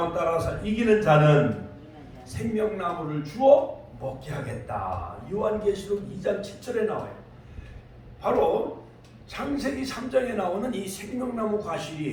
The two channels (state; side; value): identical; both; correlation 1.00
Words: 따라서, 이기는 자는 생명나무를 주어 먹게 하겠다. 요한계시록 2장 7절에 나와요. 바로 창세기 3장에 나오는 이 생명나무